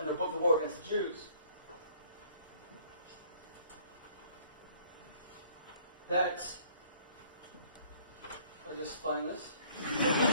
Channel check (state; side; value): inverted; both; correlation -0.58